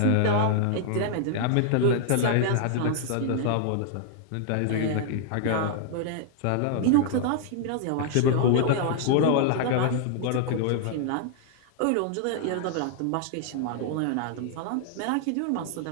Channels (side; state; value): both; different; correlation -0.01